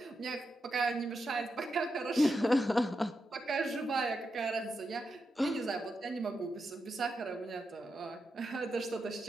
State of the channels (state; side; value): normal; both; correlation 0.86